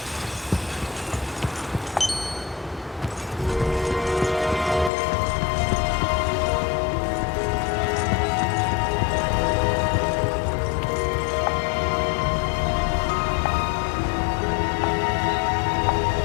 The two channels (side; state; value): right; drops out; at 4.9 s